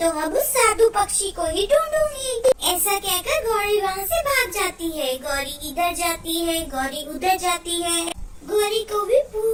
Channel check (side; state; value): both; identical; correlation 1.00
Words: अब उस साधु पक्षी को ही ढूंढूंगी। ऐसा कहकर गौरी वहाँ से भाग जाती है। गौरी इधर जाती है, गौरी उधर जाती है। गौरी को भी